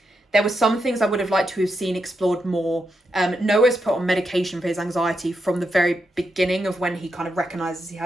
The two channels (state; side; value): normal; both; correlation 0.84